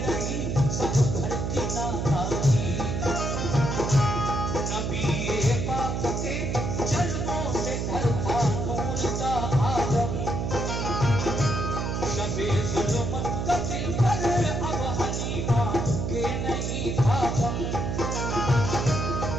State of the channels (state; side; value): noise; right; hum, 1 dB below the sound